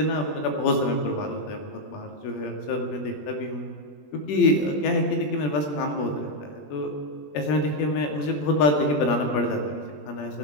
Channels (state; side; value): late; right; 20 ms